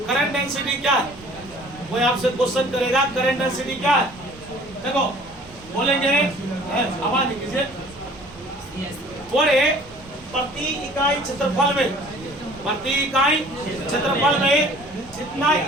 करंट डेंसिटी क्या है, कोई आपसे क्वेश्चन करेगा करंट डेंसिटी क्या है, देखो बोलेंगे, आवाज नहीं कीजिए, बोले प्रति इकाई क्षेत्रफल में, प्रति इकाई क्षेत्रफल में जितना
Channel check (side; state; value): right; noise; rumble, 22 dB below the sound